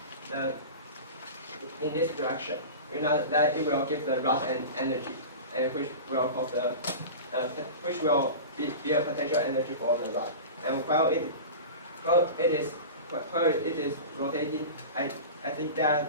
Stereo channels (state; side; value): inverted; both; correlation -0.31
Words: this direction, we know that it will give the rod an energy, and which will cause the be a potential energy for the rod. And while it is rotating, I think